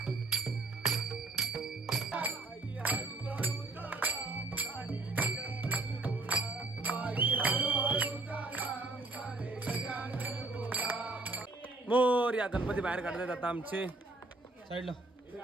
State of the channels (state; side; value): quieter; left; 3.2 dB